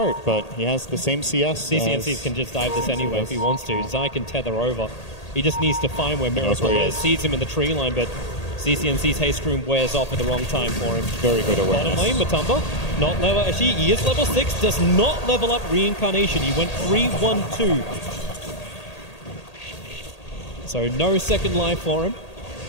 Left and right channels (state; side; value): late; right; 1.8 ms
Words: but he has the same CS. CCNCs can just dive this anyway if he wants to. Zai can tether over. He just needs to find where Miracle is. Sees him in the tree line, but CCNC's haste room wears off at the wrong time for him. Very good awareness. Bottom lane, Matumba, not level. Actually, he is level 6, does not level up Reincarnation. He went 3-1-2. So no second life for him.